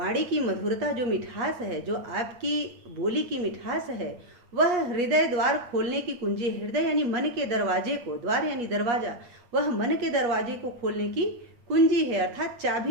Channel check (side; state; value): left; late; 8.3 ms